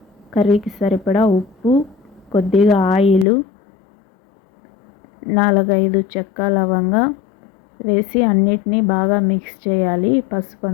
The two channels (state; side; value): drops out; right; at 3.2 s